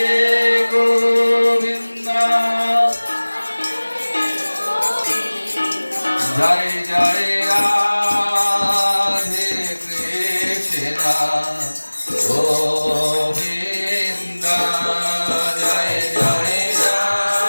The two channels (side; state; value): both; inverted; correlation -1.00